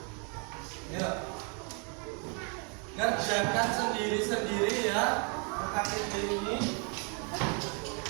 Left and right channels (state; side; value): quieter; left; 36.3 dB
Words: ya, kerjakan sendiri-sendiri ya LKPD ini.